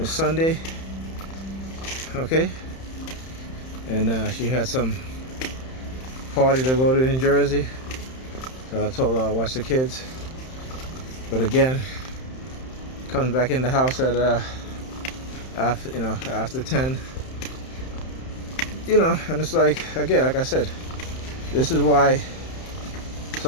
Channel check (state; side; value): late; right; 31 ms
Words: Sunday. Okay, and she had some party to go to in Jersey, so I told her I'll watch the kids. But again, comes back in the house at after 10. And it's like, again, like I said, this is why